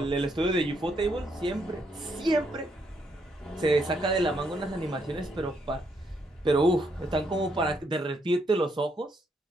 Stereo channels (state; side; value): normal; both; correlation 0.75